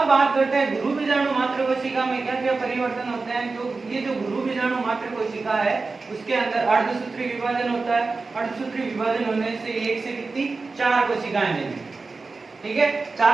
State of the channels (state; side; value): quieter; left; 4.0 dB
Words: बात करते हैं गुरु बीजाणु मात्र कोशिका में क्या क्या परिवर्तन होते हैं। तो ये जो गुरु बीजाणु मात्र कोशिका है उसके अंदर अर्धसूत्री विभाजन होता है, अर्धसूत्री विभाजन होने से एक से कितनी 4 कोशिकाएं बनेंगी। ठीक है,